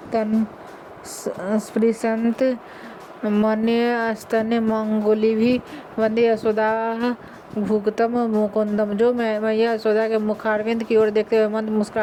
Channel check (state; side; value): identical; both; correlation 1.00